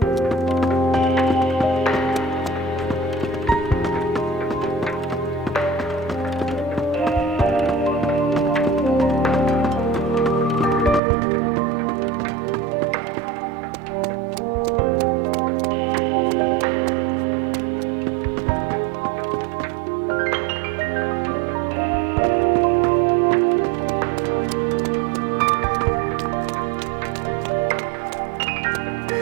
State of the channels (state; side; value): drops out; left; at 11.0 s